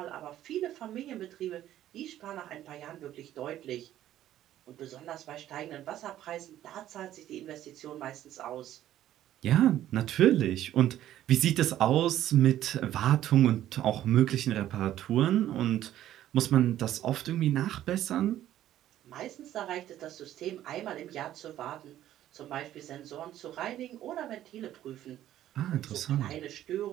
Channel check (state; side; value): quieter; left; 12.6 dB